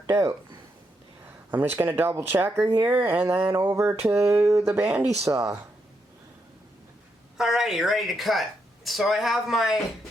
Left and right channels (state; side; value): normal; both; correlation 0.81